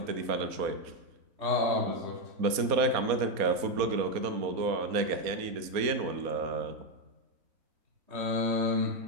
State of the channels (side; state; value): left; late; 4.2 ms